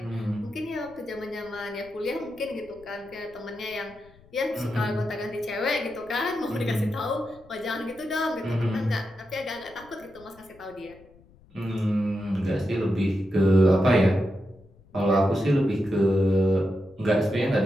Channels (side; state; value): left; noise; rumble, 27 dB below the sound